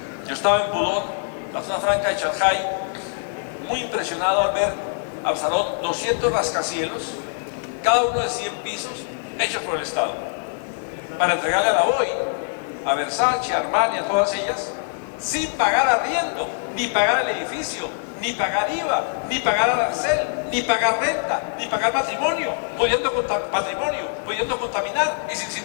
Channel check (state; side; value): silent; right; 63 dB below the other